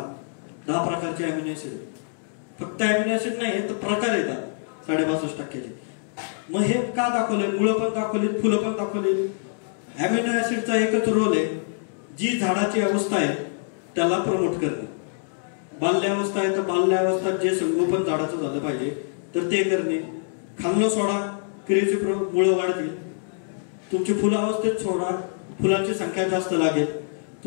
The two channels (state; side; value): silent; right; digital silence